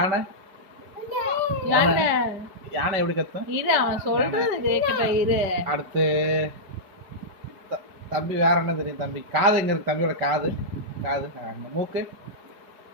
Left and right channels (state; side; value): late; left; 5.1 ms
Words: யானை யானை எப்படி கத்தும்? இரு அவன் சொல்றது கேக்கட்டும் இரு. அடுத்து தம்பி வேற என்ன தெரியும்? தம்பி காது எங்க இருக்கு? தம்பியோட காது காது மூக்கு